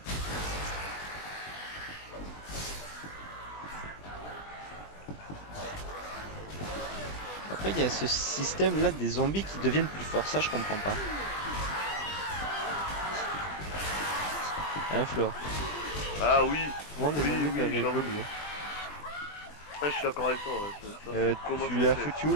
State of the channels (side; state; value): right; late; 20 ms